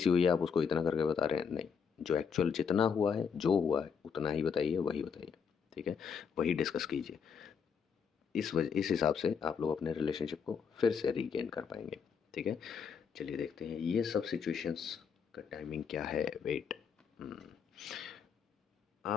हुई है, आप उसको इतना करके बता रहे हैं, नहीं, जो एक्चुअल जितना हुआ है, जो हुआ है उतना ही बताइए, वही बताइए, ठीक है, वही डिस्कस कीजिए। इस हिसाब से आप लोग अपने रिलेशनशिप को फिर से रीगेन कर पाएंगे, ठीक है। चलिए देखते हैं ये सब सिचुएशंस का टाइमिंग क्या है। वेट,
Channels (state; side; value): quieter; right; 6.6 dB